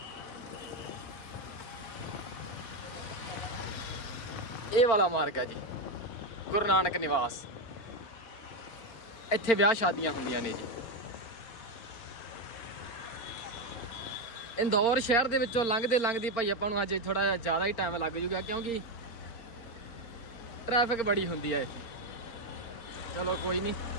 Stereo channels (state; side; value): late; right; 4.4 ms